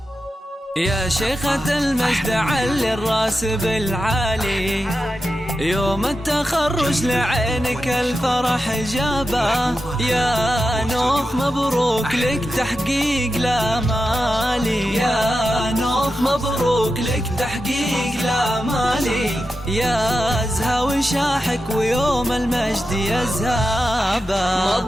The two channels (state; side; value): normal; both; correlation 0.90